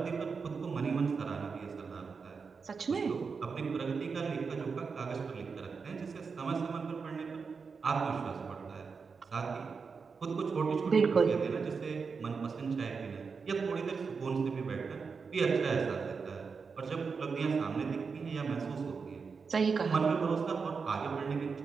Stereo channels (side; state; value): left; quieter; 5.2 dB